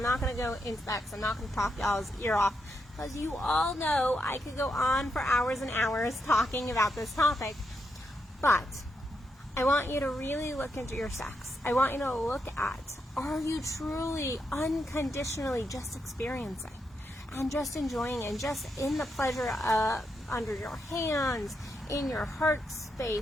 not going to go into that, because I'm not going to talk y'all's ear off. Because you all know I could go on for hours and hours talking about this topic. But I want you to really look into your sex. I want you to look at, are you truly unconditionally just experiencing and just enjoying and just in the pleasure under your hands, in your heart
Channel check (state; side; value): normal; both; correlation 0.82